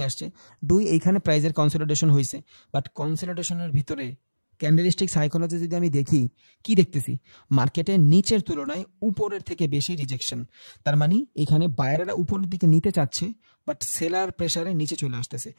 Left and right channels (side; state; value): both; inverted; correlation -1.00